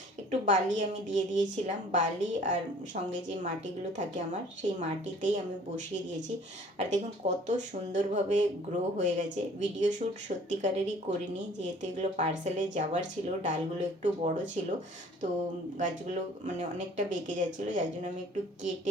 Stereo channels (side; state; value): both; normal; correlation 0.53